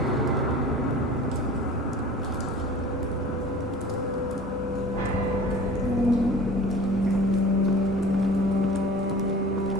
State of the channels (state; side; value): normal; both; correlation 0.42